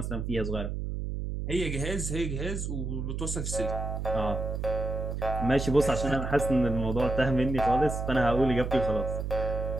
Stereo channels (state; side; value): noise; right; hum, 3 dB below the sound